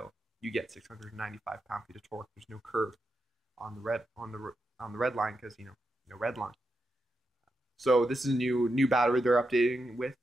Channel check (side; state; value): both; normal; correlation 0.86